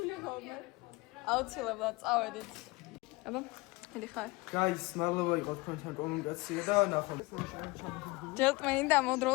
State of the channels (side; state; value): right; quieter; 23.6 dB